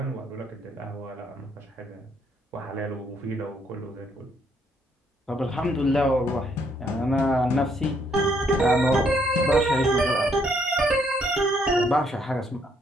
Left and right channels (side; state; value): both; normal; correlation 0.70